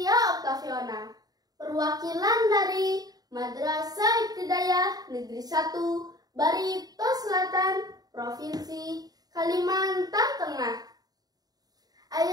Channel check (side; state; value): left; late; 0.18 ms